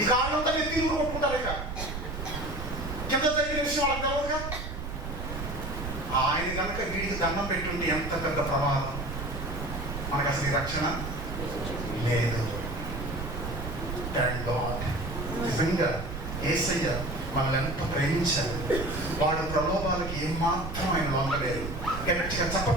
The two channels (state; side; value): noise; right; rumble, 6 dB below the sound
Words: ఈ కారణంతా మీరు తీరు కొట్టుకుంటారు. ఇక కింద దగ్గర విషయం వాళ్ళకి తెలవదుగా. ఆయన కనుక వీడికి దండం పెట్టుంటే ఎంత పెద్ద ప్రమాదం. మనకు అసలు ఈ రక్షణ లేదు. Thank God. నిజంగా యేసయ్య మనల్ని ఎంత ప్రేమించారు. వాడు ప్రలోభాలకి ఏమాత్రం ఆయన లొంగలేదు. గట్టిగా